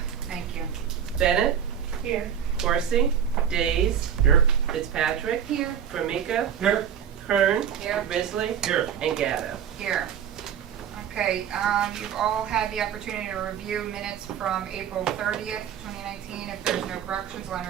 thank you. Bennett, Here. Corsi, Days, Here. Fitzpatrick, Here. Formica, Here. Kern, Here. Risley, Here. and Gatto. Here. Okay, you've all had the opportunity to review minutes from April 30th, 2019. If there's no corrections, I'll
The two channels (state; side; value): quieter; left; 8.6 dB